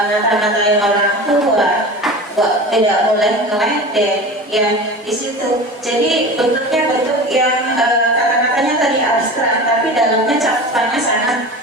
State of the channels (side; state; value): both; normal; correlation 0.33